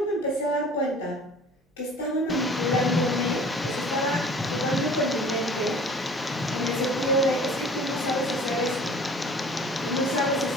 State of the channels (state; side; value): normal; both; correlation 0.47